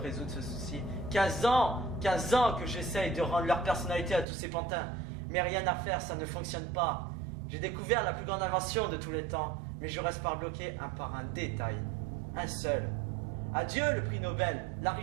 ce souci. 15 ans que j'essaye de rendre leur personnalité à tous ces pantins. Mais rien à faire, ça ne fonctionne pas. J'ai découvert la plus grande invention de tous les temps, mais je reste bloqué par un détail. Un seul. Adieu le prix Nobel, la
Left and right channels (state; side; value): drops out; left; at 4.2 s